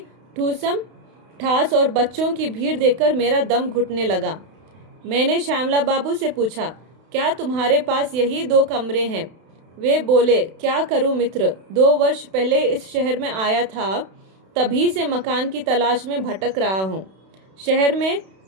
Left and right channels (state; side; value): late; left; 32 ms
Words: ठूसम ठास और बच्चों की भीड़ देखकर मेरा दम घुटने लगा। मैंने श्यामला बाबू से पूछा, क्या तुम्हारे पास यही 2 कमरे हैं? वे बोले, क्या करूं मित्र, 2 वर्ष पहले इस शहर में आया था, तभी से मकान की तलाश में भटक रहा हूं। शहर में